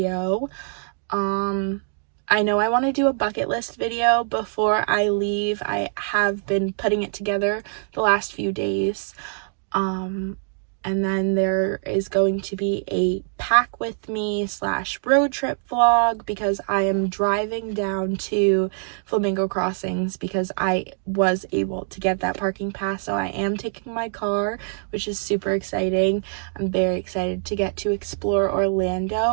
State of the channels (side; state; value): left; silent; digital silence